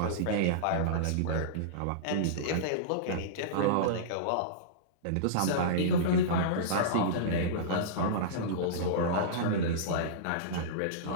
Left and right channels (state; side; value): different; both; correlation -0.04